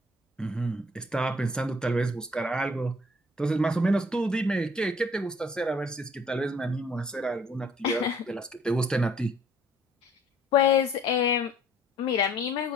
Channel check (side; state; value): both; normal; correlation 0.58